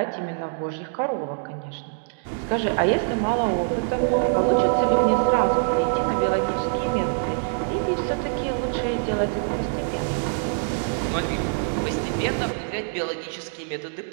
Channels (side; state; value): left; silent; digital silence